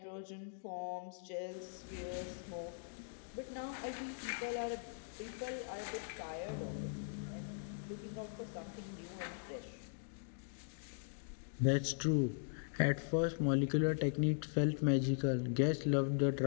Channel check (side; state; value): right; silent; digital silence